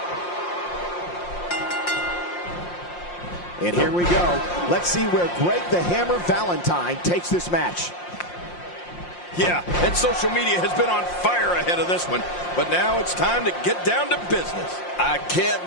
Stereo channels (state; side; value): late; right; 5.7 ms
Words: And here we go. Let's see where Greg the Hammer Valentine takes this match. Yeah, and social media has been on fire ahead of this one. But now it's time to get down to business. I can't